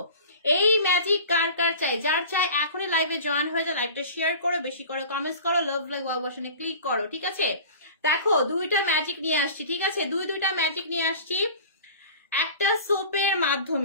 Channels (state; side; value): inverted; both; correlation -0.39